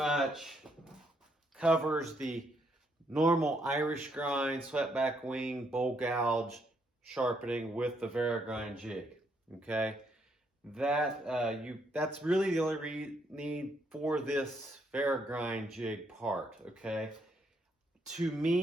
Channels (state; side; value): normal; both; correlation 0.74